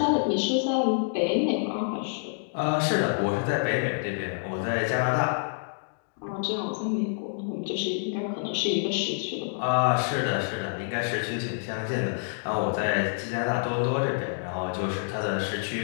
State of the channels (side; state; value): right; silent; digital silence